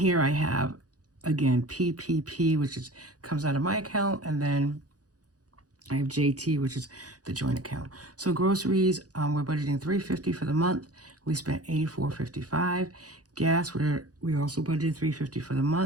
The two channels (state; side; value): late; left; 0.67 ms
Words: I have, again, PPP, which comes out of my account, and then I have JT, which is the joint account. So groceries, we're budgeting $350 for the month. We spent $84.55. Gas, we also budgeted $350 for the